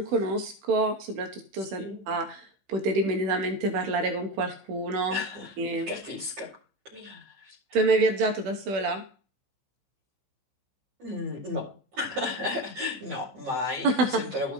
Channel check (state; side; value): late; left; 16 ms